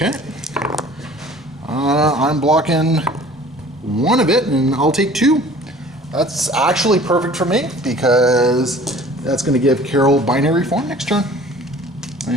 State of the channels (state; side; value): normal; both; correlation 0.48